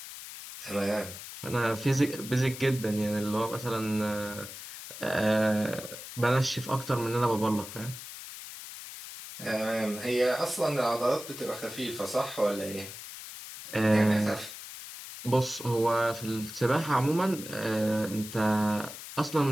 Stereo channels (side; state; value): left; noise; hiss, 12 dB below the sound